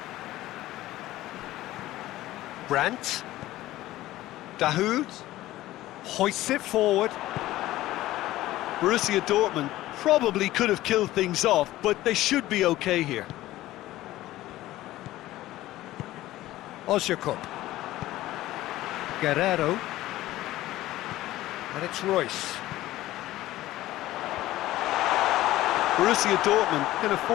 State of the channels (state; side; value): quieter; right; 15.8 dB